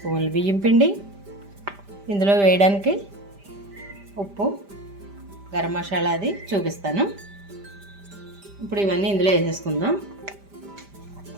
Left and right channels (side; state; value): left; late; 5.0 ms